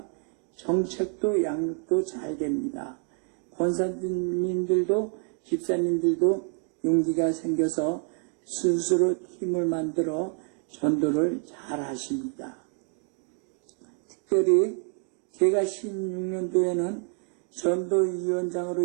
정책도 양육도 잘 됩니다. 권사님들도 집사님들도 용기가 생겨서 스스로 팀을 만들어 전도를 잘 하십니다. 특별히 제가 16년도에는 전도위원장으로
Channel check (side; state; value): left; quieter; 37.2 dB